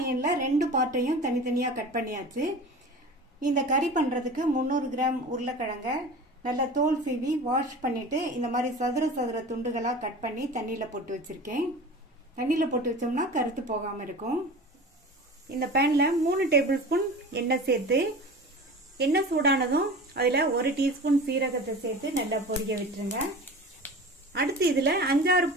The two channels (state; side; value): normal; both; correlation 0.36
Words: ரெண்டு பார்ட்டையும் தனித்தனியா கட் பண்ணியாச்சு. இந்த கறி பண்றதுக்கு 300 கிராம் உருளைக்கிழங்க நல்லா தோல் சீவி வாஷ் பண்ணிட்டு இந்த மாதிரி சதுர துண்டுகளா கட் பண்ணி தண்ணியில போட்டு வச்சிருக்கேன். தண்ணியில போட்டு வச்சோம்னா கருத்து போகாம இருக்கும். இந்த பேன்ல 3 டேபிள் ஸ்பூன் எண்ணெய் சேர்த்து எண்ணெய் சூடானதும் அதுல 1 டீஸ்பூன் சீரகத்தை சேர்த்து நல்லா பொரிய விட்டுருங்க. அடுத்து இதுல 5-6